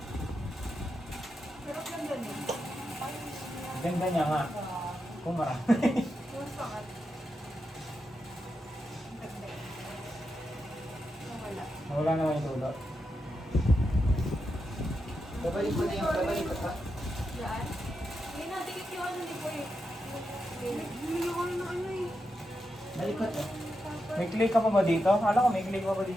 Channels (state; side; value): normal; both; correlation 0.86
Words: Pero ang ganda niya. Ganda niya nga. Kung marami. Mas pangat. Ang ganda. Nawala. Wala naman yung tulo. babalik mo na yung babalik pa. Yan. Hindi na, dikit yung ano ni Boy. Bumili ko na ng ano eh. Balikot eh. May clay ka pa ba dito? Akala ko may clay pa ba